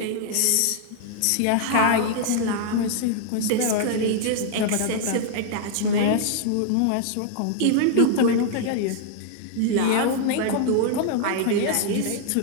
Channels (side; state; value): both; different; correlation 0.00